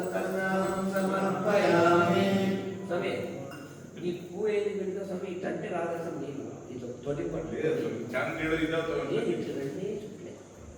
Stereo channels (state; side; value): identical; both; correlation 1.00